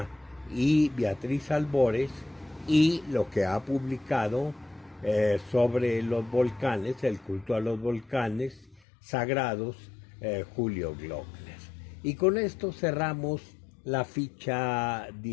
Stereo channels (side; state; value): right; drops out; at 8.8 s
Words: y Beatriz Albores, y lo que ha publicado sobre los volcanes, el culto a los volcanes sagrados, Julio Glockner. Y con esto cerramos la ficha